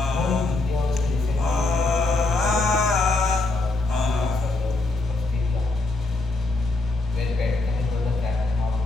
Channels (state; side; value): quieter; right; 3.1 dB